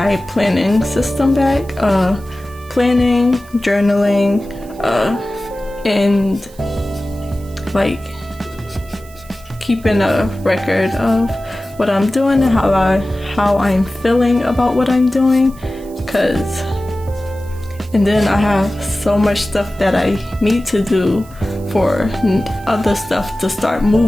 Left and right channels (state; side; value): noise; right; hiss, 24 dB below the sound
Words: planning system back. Planning, journaling, and like keeping a record of what I'm doing and how I'm feeling about what I'm doing. And then I have so much stuff that I need to do for other stuff to start